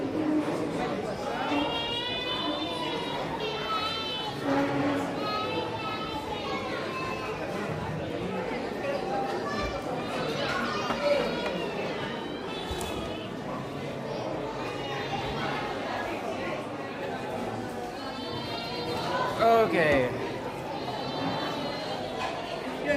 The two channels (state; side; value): identical; both; correlation 1.00